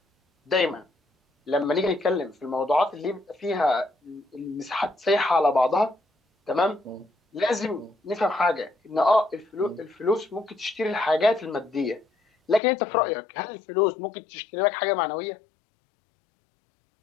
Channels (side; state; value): right; drops out; at 12.6 s